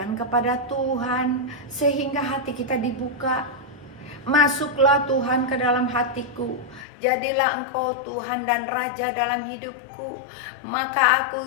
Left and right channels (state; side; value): drops out; right; at 6.9 s